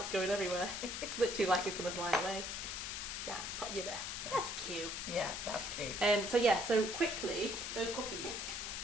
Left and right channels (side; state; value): left; noise; hiss, 4 dB below the sound